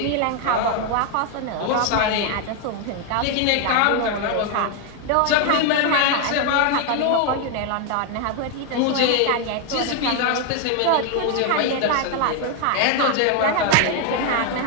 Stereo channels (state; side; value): different; both; correlation 0.01